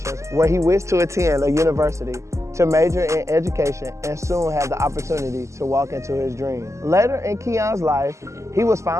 where he wished to attend a university to major in education and soon have the opportunity to walk into his dream. Later in Keon's life, he was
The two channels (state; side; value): late; left; 0.14 ms